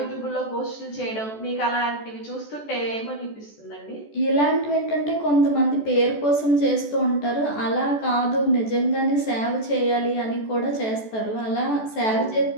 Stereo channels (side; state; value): right; late; 14 ms